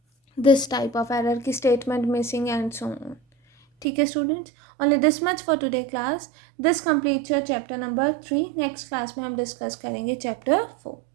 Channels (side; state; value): left; drops out; at 3.9 s